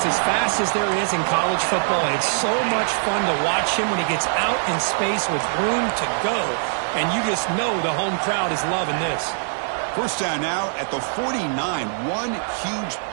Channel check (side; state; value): left; silent; digital silence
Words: as fast as there is in college football, and it's so much fun to watch him when he gets out in space with room to go. And you just know the home crowd is loving this. First down now at the 49. One huge